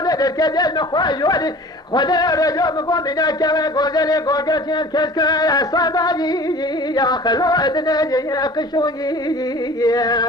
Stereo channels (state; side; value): normal; both; correlation 0.43